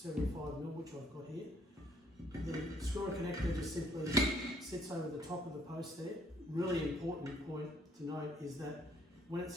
which I've got here. The screw-on connector just simply sits over the top of the post there. Really important point to note is that when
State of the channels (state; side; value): normal; both; correlation 0.66